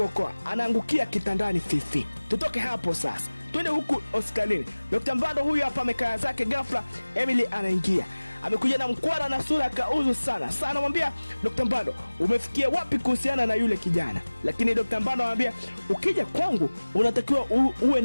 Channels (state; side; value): inverted; both; correlation -1.00